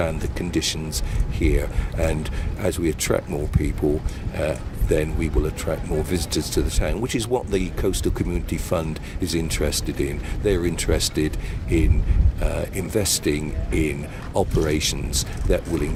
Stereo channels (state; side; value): identical; both; correlation 1.00